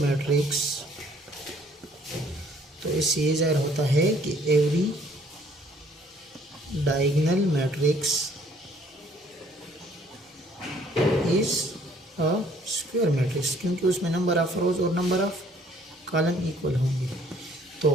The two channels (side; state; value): both; normal; correlation 0.60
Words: तो इससे ये जाहिर होता है कि every diagonal matrix is a square matrix, क्योंकि उसमें नंबर ऑफ रोज और नंबर ऑफ कॉलम इक्वल होंगे। तो